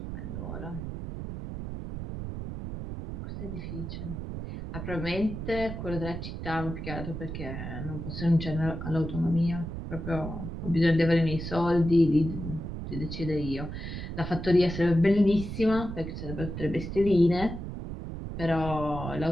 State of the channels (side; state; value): right; noise; rumble, 7 dB below the sound